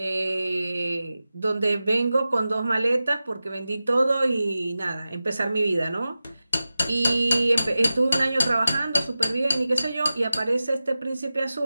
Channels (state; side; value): inverted; both; correlation -0.94